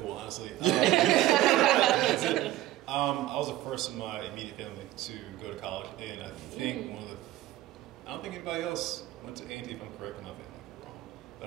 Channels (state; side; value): quieter; left; 15.3 dB